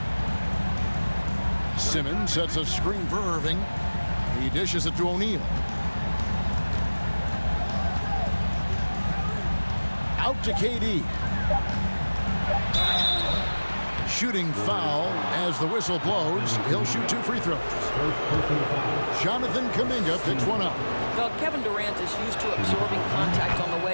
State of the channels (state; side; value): inverted; both; correlation -1.00